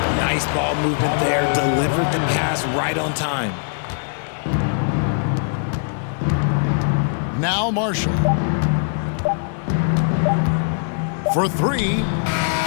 Nice ball movement there. Delivered the pass right on time. Now Marshall. For 3.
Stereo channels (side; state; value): right; silent; digital silence